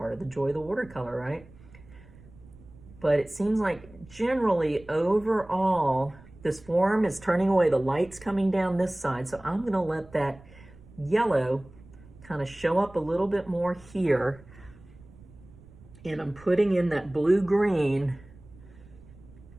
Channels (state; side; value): noise; right; rumble, 22 dB below the sound